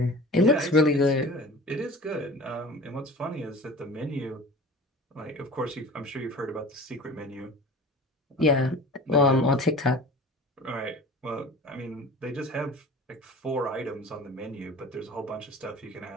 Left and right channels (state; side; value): normal; both; correlation 0.40